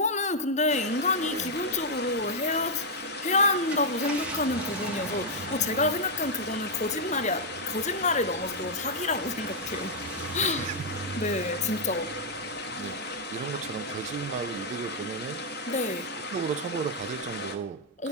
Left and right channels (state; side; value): normal; both; correlation -0.03